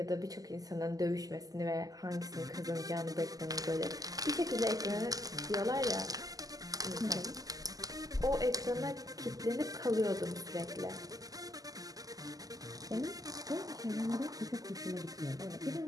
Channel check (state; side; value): late; left; 0.17 ms